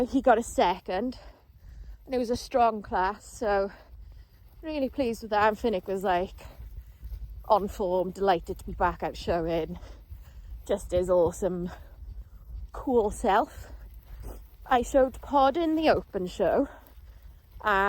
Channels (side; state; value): both; identical; correlation 1.00